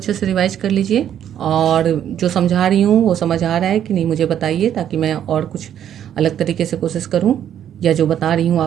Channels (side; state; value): left; quieter; 10.1 dB